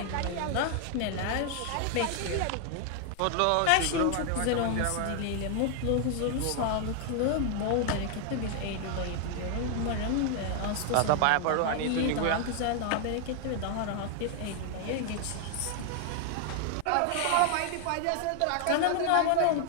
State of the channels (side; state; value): both; different; correlation 0.00